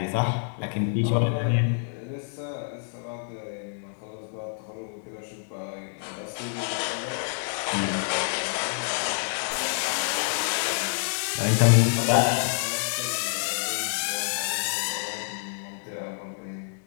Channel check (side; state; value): right; silent; digital silence